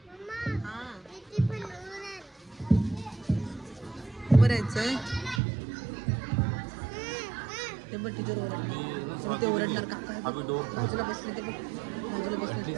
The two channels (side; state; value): left; drops out; at 5.4 s